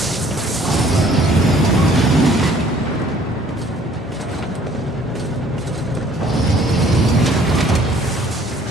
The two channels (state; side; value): normal; both; correlation 0.57